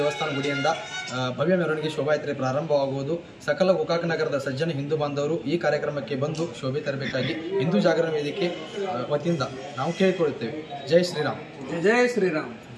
ಗುಡಿಯಿಂದ ಭವ್ಯ ಮೆರವಣಿಗೆ ಶೋಭಾಯಾತ್ರೆ ಪ್ರಾರಂಭವಾಗುವುದು. ಸಕಲ ಗೋಕಾಕ್ ನಗರದ ಸಜ್ಜನ ಹಿಂದೂ ಬಾಂಧವರು ಈ ಕಾರ್ಯಕ್ರಮಕ್ಕೆ ಬಂದು ಶೋಭೆ ತರಬೇಕಾಗಿ ಹಿಂದೂ ಜಾಗರಣ ವೇದಿಕೆ ವತಿಯಿಂದ ನಾವು ಕೇಳಿಕೊಳ್ಳುತ್ತೇವೆ. ಜೈ ಶ್ರೀರಾಮ್. ಜೈ ಶ್ರೀರಾಮ್.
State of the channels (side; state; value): both; identical; correlation 1.00